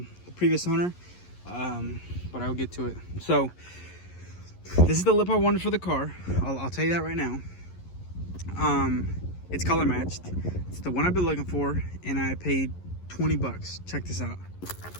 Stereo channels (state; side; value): late; right; 11 ms